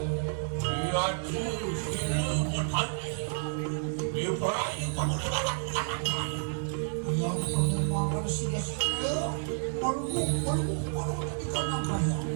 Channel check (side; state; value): left; silent; 58 dB below the other